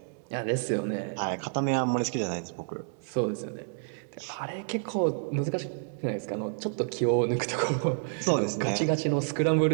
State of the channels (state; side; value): silent; left; digital silence